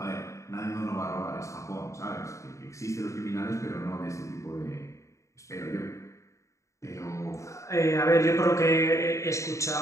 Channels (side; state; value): right; late; 0.15 ms